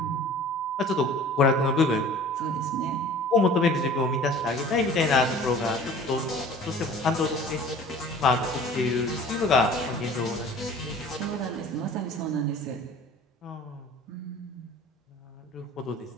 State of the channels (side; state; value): both; normal; correlation 0.46